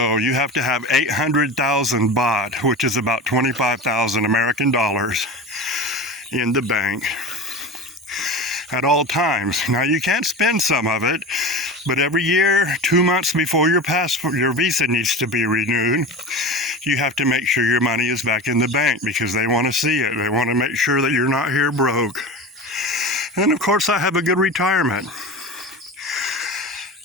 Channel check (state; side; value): normal; both; correlation 0.30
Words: you have to have 800,000 baht, which is about 25,000 American dollars, in the bank at all times. Now, you can't spend some of it, but every year, 2 months before your visa needs to be renewed, you have to make sure your money is back in the bank because they want to see it. They want to make sure that you're not here broke. And of course, I have a good retirement.